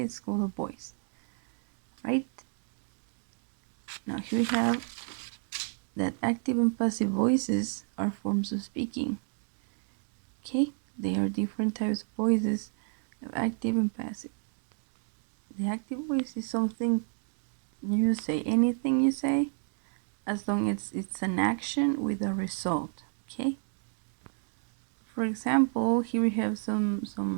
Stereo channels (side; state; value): left; silent; 57 dB below the other